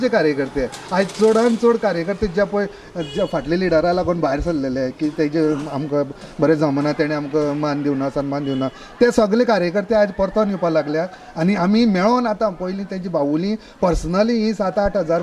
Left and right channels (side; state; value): both; identical; correlation 1.00